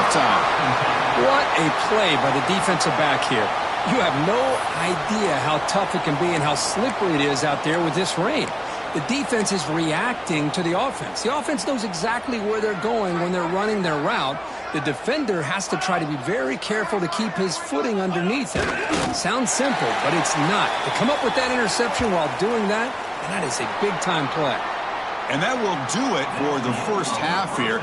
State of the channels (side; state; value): both; identical; correlation 1.00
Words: What a play by the defensive back here. You have no idea how tough it can be and how slippery it is out there with this rain. The defense is reacting to the offense. The offense knows exactly where they're going when they're running their route. The defender has to try to be very careful to keep his footing underneath him. Sounds simple, but it's not. To come up with that interception while doing that, and that is a big-time play. And that will do it for the first half here.